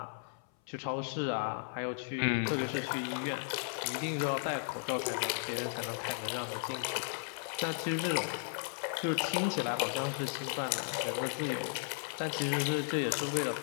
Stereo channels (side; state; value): right; silent; 54 dB below the other